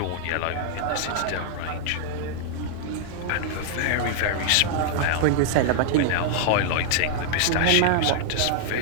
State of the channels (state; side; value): different; both; correlation -0.01